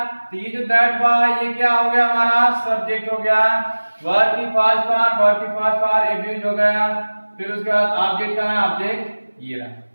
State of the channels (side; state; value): both; inverted; correlation -1.00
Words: तो ये जो दैट बॉय ये क्या हो गया हमारा सब्जेक्ट हो गया। वर्ब की फर्स्ट फॉर्म एब्यूज हो गया। फिर उसके बाद ऑब्जेक्ट का है, ऑब्जेक्ट ये रहा